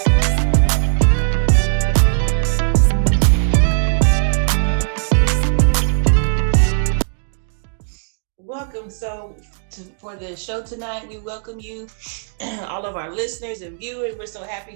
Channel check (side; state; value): left; silent; digital silence